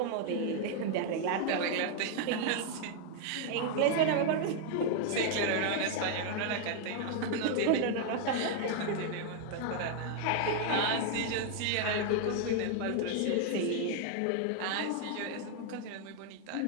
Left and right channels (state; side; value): different; both; correlation 0.00